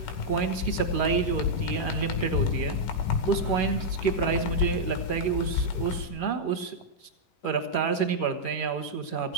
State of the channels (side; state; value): right; late; 11 ms